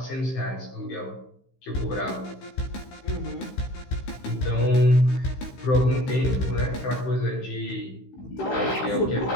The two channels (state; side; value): late; right; 15 ms